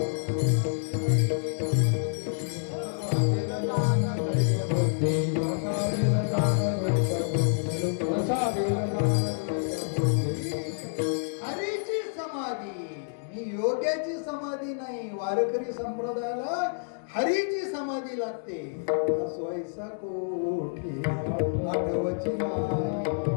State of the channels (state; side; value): silent; right; digital silence